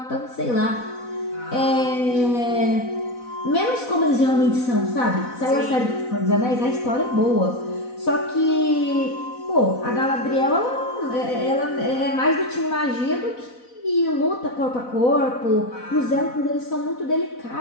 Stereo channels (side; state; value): right; late; 4.0 ms